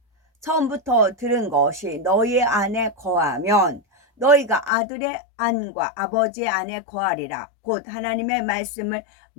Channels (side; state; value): right; drops out; at 4.7 s